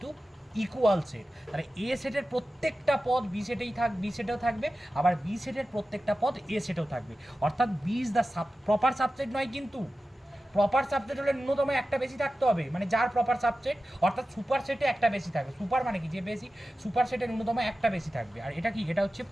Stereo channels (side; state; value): both; normal; correlation 0.94